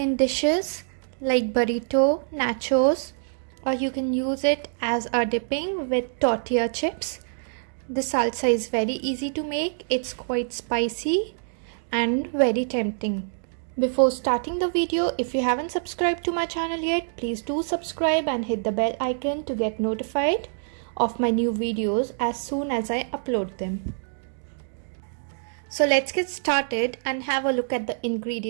dishes like burrito, nachos, or you can use it as a dipping with tortilla chips. This salsa is very easy to make. It's quite spicy and very tempting. Before starting the video, if you haven't subscribed to my channel yet, please do subscribe and hit the bell icon to get notified of my new videos as soon as I upload them. So let's get started and have a look at the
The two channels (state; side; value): silent; left; digital silence